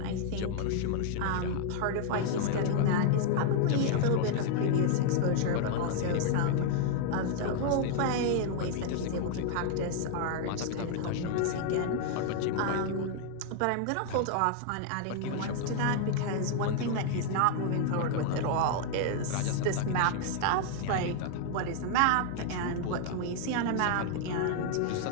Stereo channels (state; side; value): different; both; correlation 0.00